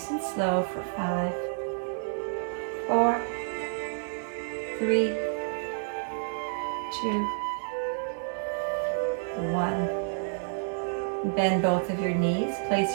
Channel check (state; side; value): silent; left; digital silence